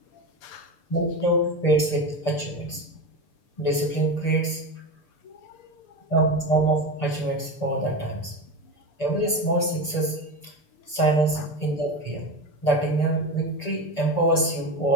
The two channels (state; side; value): late; right; 6.8 ms